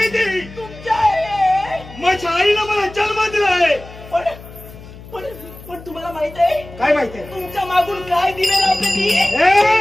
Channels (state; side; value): noise; left; hum, 17 dB below the sound